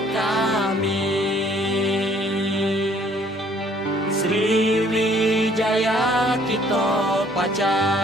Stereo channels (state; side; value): normal; both; correlation 0.61